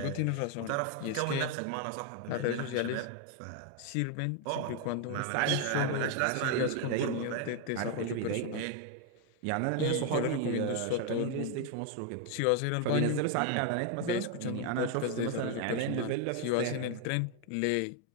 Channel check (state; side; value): different; both; correlation 0.01